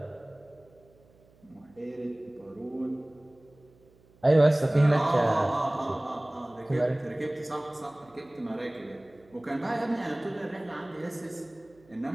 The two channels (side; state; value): right; noise; hum, 29 dB below the sound